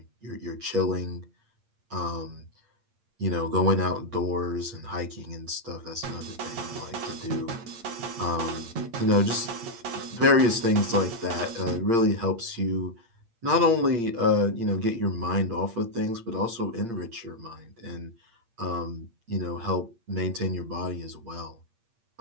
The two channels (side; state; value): left; late; 8.6 ms